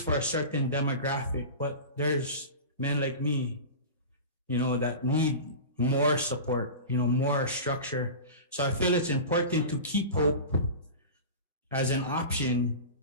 for a certain demographic, but there's men like me, that need more support, more structure. So I feel it's important to keep Hope as an option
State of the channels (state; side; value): inverted; both; correlation -0.31